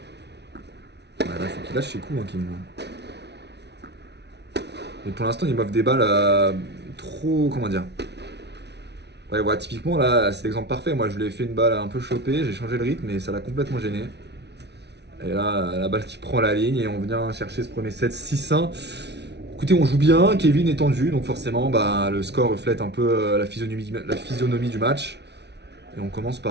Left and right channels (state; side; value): late; left; 0.50 ms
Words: Ouais, là, faut qu'il lâche ses coups, hein, Kevin. Mais pour l'instant, il m'offre des balles trop. Comment dire? Ouais, typiquement, là, c'est l'exemple parfait. Moi, je lui ai fait une balle un peu chopée, j'ai changé le rythme, mais ça l'a complètement gêné. Et là, la balle qui prend la ligne, et on vient chercher ce premier set 6-1. Écoutez, on joue bien, Kevin est tendu, donc forcément, bah, le score reflète un peu la physionomie du match. Et on commence